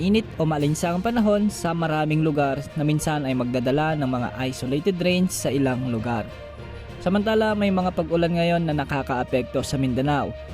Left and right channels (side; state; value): both; identical; correlation 1.00